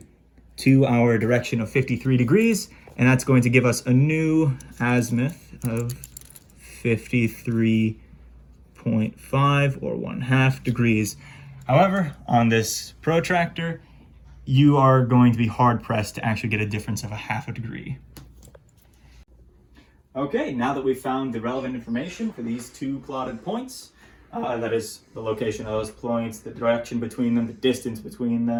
to our direction of 53 degrees, and that's going to give us a new azimuth of 53.5 or 1/2 degrees. However, on this protractor, you are going to be hard pressed to actually get a difference of 1/2 degree. Okay, now that we've found the relevant information for these two plotted points, that is the location of those points, the direction between them, the distance between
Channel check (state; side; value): identical; both; correlation 1.00